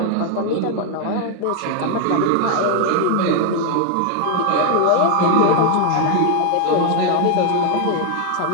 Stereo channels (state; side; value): different; both; correlation 0.00